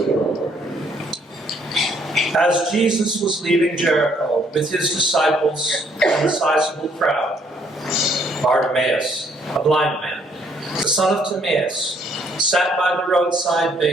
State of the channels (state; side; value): normal; both; correlation 0.66